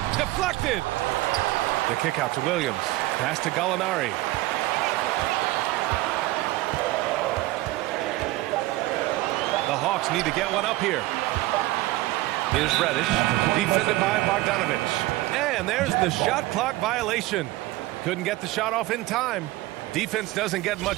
deflected. The kick out to Williams. Pass to Gallinari. The Hawks need to get one up here. Here's Reddish, defended by Bogdanovic. And there's the shot clock violation. Couldn't get the shot off in time. Defense doesn't get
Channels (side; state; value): left; quieter; 18.2 dB